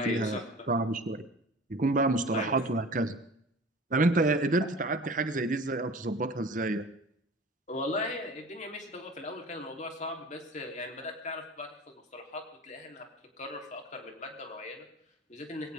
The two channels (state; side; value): normal; both; correlation 0.41